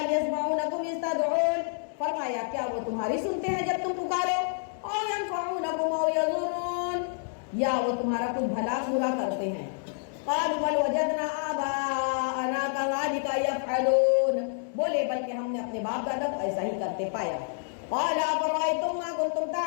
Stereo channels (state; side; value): silent; right; digital silence